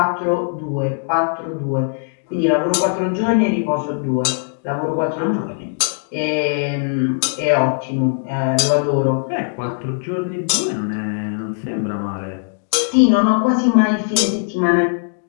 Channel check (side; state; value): right; silent; digital silence